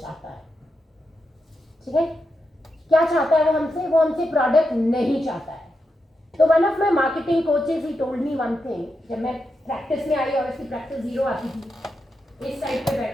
चाहता है. ठीक है, क्या चाहता है वो हमसे? वो हमसे प्रोडक्ट नहीं चाहता है. तो one of my marketing coaches he told me one thing. जब मैं प्रैक्टिस में आई, ऑब्वियसली प्रैक्टिस 0 आती थी, इस साइड पे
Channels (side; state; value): both; normal; correlation 0.86